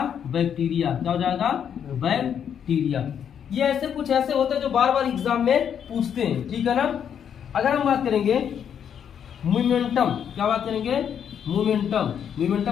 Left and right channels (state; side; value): quieter; right; 8.4 dB